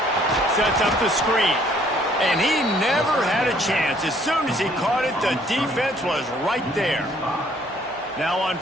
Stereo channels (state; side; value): normal; both; correlation 0.62